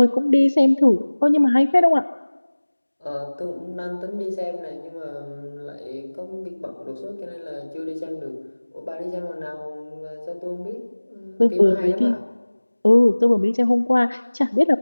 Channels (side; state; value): both; inverted; correlation -1.00